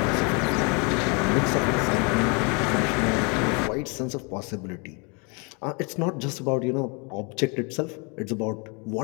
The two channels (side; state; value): right; quieter; 32.5 dB